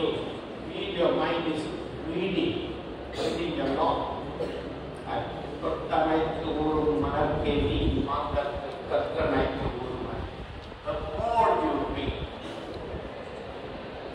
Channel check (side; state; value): both; identical; correlation 1.00